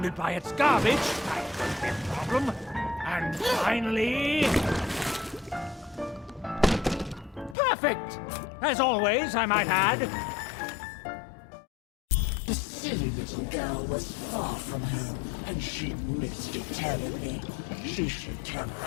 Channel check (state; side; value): drops out; right; at 7.6 s